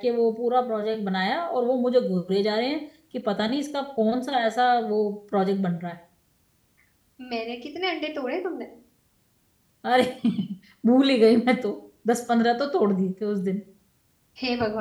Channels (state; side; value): identical; both; correlation 1.00